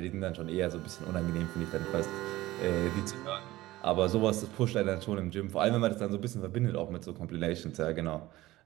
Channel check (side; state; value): left; quieter; 17.4 dB